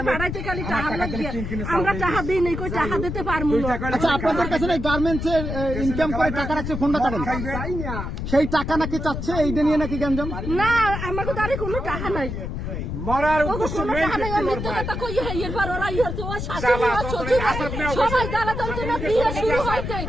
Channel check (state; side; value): noise; left; rumble, 5 dB below the sound